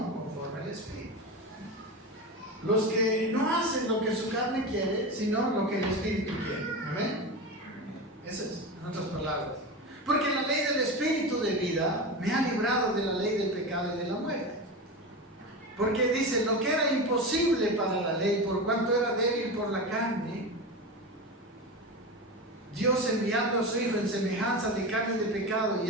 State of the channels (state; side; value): normal; both; correlation 0.23